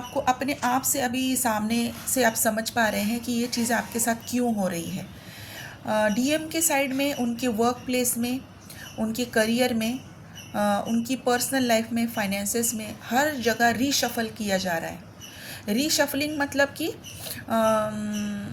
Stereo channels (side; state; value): both; identical; correlation 1.00